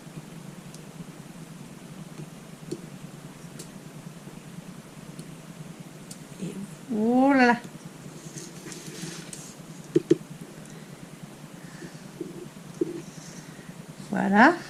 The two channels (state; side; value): identical; both; correlation 1.00